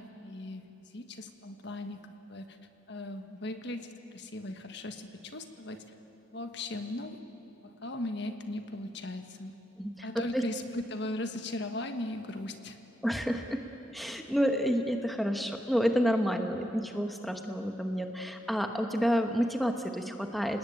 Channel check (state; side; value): normal; both; correlation 0.82